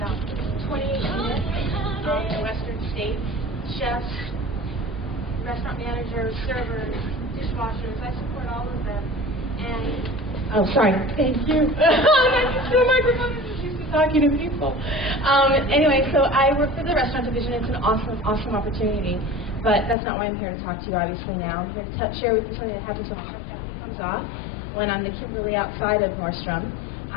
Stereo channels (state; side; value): drops out; right; at 20.0 s